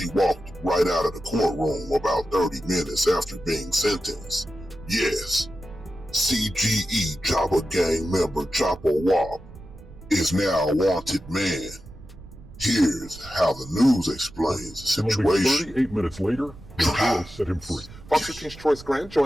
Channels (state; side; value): noise; right; rumble, 18 dB below the sound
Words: walked right out of the courtroom about 30 minutes after being sentenced. Yes, CGE Chopper Gang member Chopper Wop is now a wanted man. Here's how the news explains the situation. 38 minutes later, the jail set him free. Fox 13's Troyce Grant